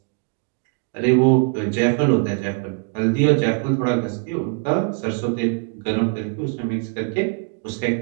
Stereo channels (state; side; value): quieter; left; 33.9 dB